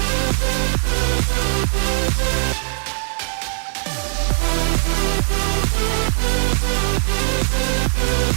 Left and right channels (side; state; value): left; silent; digital silence